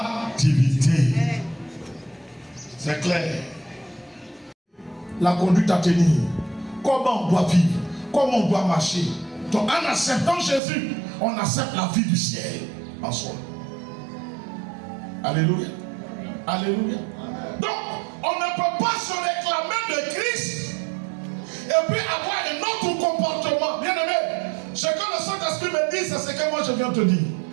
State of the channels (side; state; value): left; drops out; at 10.6 s